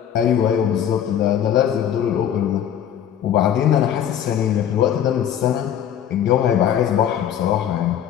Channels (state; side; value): quieter; right; 9.7 dB